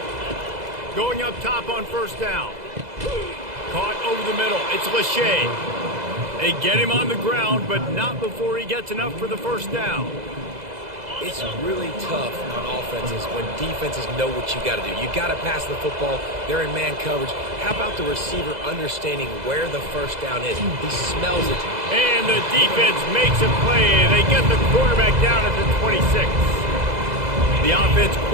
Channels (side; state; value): left; late; 2.0 ms